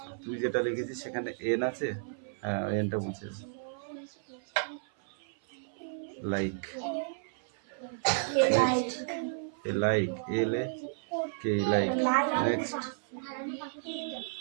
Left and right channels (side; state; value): left; silent; 56 dB below the other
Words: তুই যেটা লিখেছিস সেখানে এন আছে হ্যাঁ ওই এনটা মুছে দাও লাইক লাইক এল এ কে লাইক নেক্সট